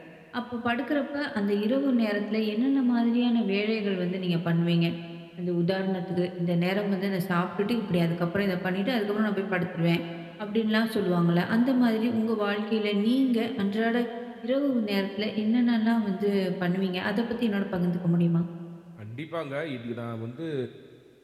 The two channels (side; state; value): both; identical; correlation 1.00